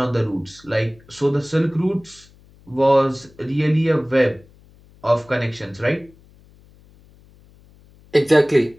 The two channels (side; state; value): left; noise; hum, 27 dB below the sound